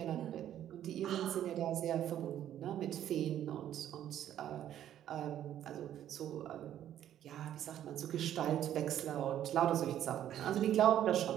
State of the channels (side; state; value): left; quieter; 11.2 dB